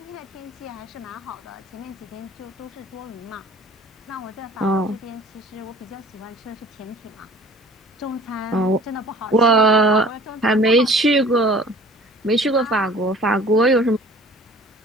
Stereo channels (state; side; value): normal; both; correlation 0.48